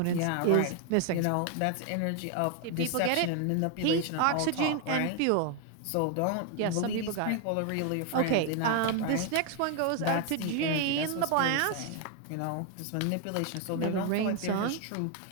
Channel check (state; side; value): different; both; correlation 0.00